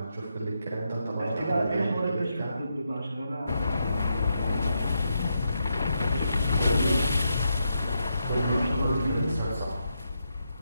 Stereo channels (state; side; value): inverted; both; correlation -0.82